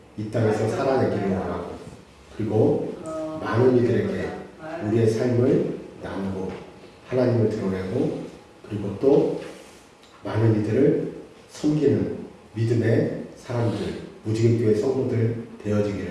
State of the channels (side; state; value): both; identical; correlation 1.00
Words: 이 땅에서 살아내기를 원하고, 그리고 많은 이들에게 우리의 삶을 나누고 하나님을 드러내고, 그리고 또 많은 이들을 섬기는 믿음의 사람들, 무지개교회 성도들